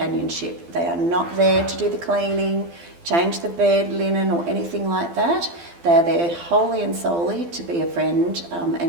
They are not there to do the cleaning, change the bed, linen or anything like that. They're there wholly and solely to be a friend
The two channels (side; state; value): left; late; 12 ms